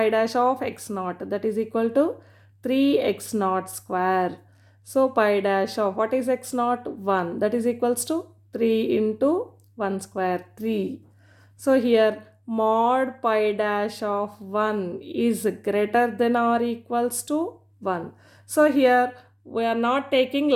dash of x naught, that is equal to 3x naught square. So pi dash of what is x naught? 1. That is equals to 3 into 1 square, 3. So here mod pi dash of 1 is greater than or equals to 1. So here we are not taking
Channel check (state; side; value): identical; both; correlation 1.00